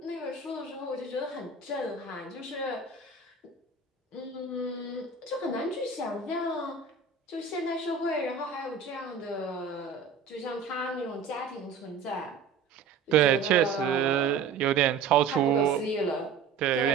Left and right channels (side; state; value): left; quieter; 5.4 dB